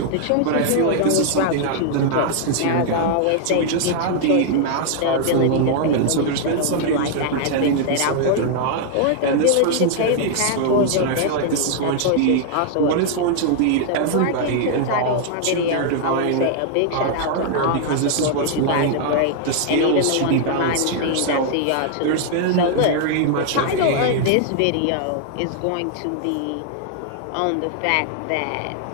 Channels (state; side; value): different; both; correlation -0.01